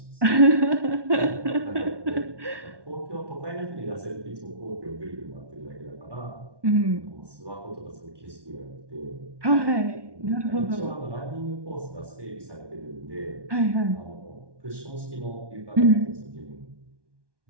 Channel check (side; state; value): left; late; 1.2 ms